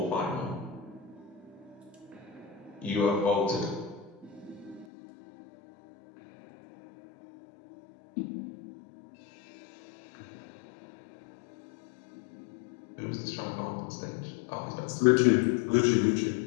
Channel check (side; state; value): right; drops out; at 4.9 s